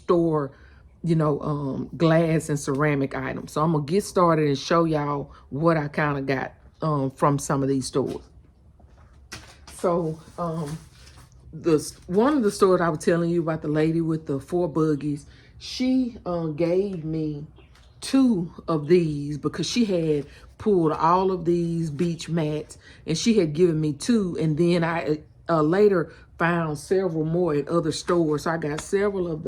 glass and ceramic items. So I'm gonna get started and show y'all what I kind of got from some of these stores. So one of the stores I was telling you about, the lady with the 4 buggies, she gave me 2 of these, because she had pulled all of these beach mats, and she had given me 2, and then I later found several more at other stores. So I got several of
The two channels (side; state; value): both; identical; correlation 1.00